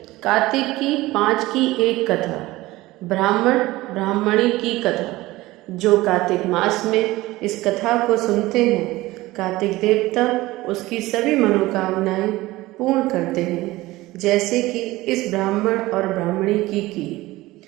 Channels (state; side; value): quieter; left; 18.6 dB